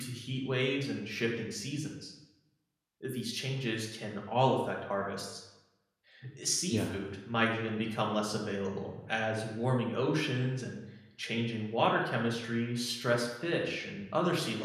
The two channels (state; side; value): identical; both; correlation 1.00